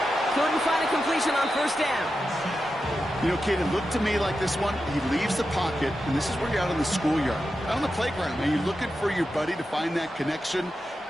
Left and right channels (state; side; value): normal; both; correlation 0.90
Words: Couldn't find a completion on 1st down. You know, Kate, it looked to me like this one, he leaves the pocket, and this is where you're out on the schoolyard, out on the playground, and you're looking for your buddy to find that connection.